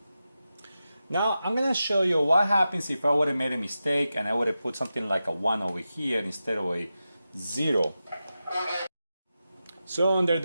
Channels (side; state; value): both; inverted; correlation -0.92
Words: Now I'm going to show you what happens if I would have made a mistake and I would have put something like a 1 over here instead of a 0. So under